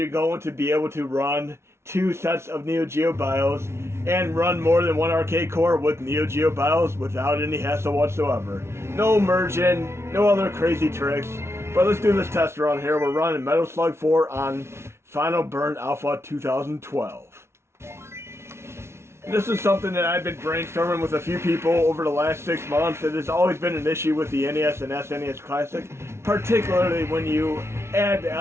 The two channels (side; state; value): left; late; 0.13 ms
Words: going to be able to run two sets of NEO-GEO BIOS and run more than one arcade core with NEO-GEO BIOS without any hassle whatsoever. No merging, no other crazy tricks. But let's do this test run here. We're running Metal Slug 4 on Final Burn Alpha 2012. This is something that I've been brainstorming with a few people over the last 6 months. It has always been an issue with the NES and SNES Classic, particularly when you add the